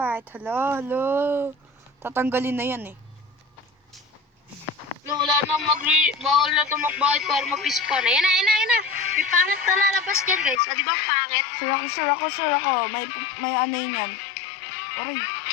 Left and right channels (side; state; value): right; drops out; at 10.6 s